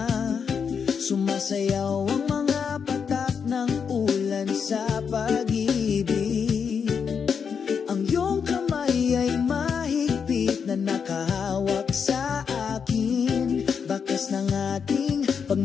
sumasayaw ang mga patak ng ulan sa pag-ibig. Ang iyong kamay ay mahigpit na nakahawak sa akin, bakas ng ating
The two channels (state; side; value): quieter; right; 6.5 dB